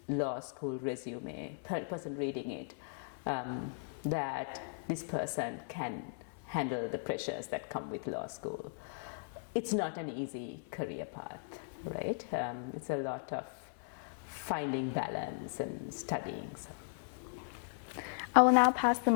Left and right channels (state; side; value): silent; right; 53 dB below the other